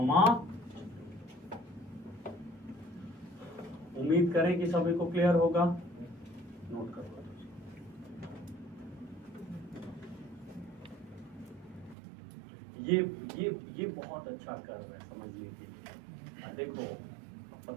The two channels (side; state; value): left; drops out; at 12.0 s